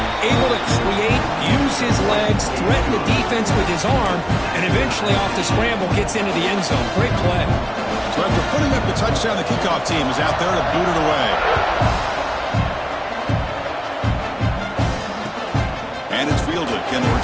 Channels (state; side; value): identical; both; correlation 1.00